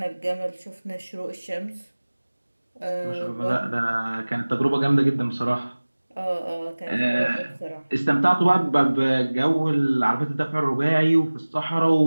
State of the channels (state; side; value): inverted; both; correlation -1.00